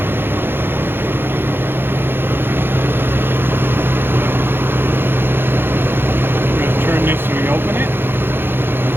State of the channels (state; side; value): late; left; 0.10 ms